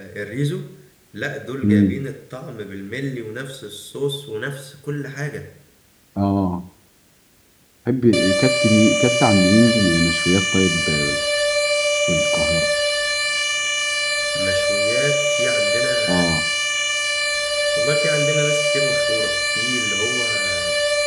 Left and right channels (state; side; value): identical; both; correlation 1.00